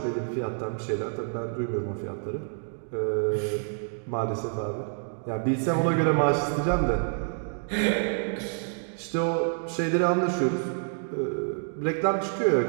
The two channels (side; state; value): left; silent; digital silence